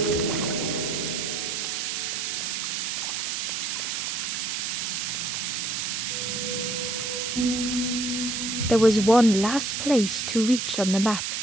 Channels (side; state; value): right; noise; hiss, 2 dB below the sound